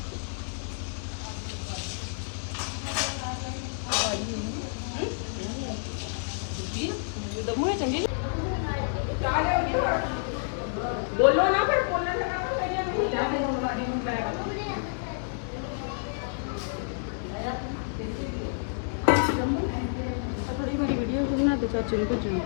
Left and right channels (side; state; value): right; silent; digital silence